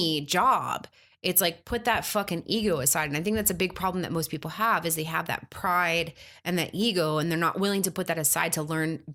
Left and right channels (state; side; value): identical; both; correlation 1.00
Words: job, it's like put that fucking ego aside. And I think that's a big problem that most people have is they have that pride and that ego, and they're not willing to put that aside to learn